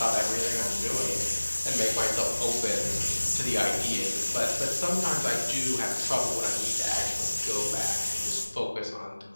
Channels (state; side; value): inverted; both; correlation -1.00